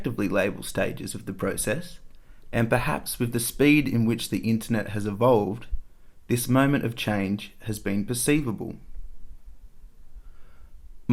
label stages of the process, and perhaps with the speed in which the internet has evolved, this moment of change has been perceivable.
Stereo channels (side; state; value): both; identical; correlation 1.00